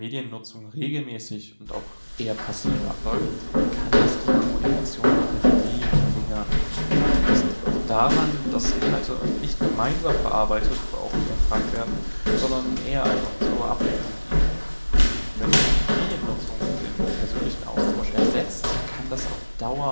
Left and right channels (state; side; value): inverted; both; correlation -1.00